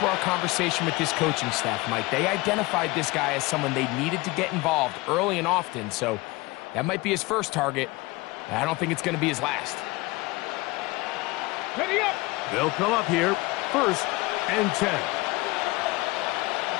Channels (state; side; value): quieter; right; 22.6 dB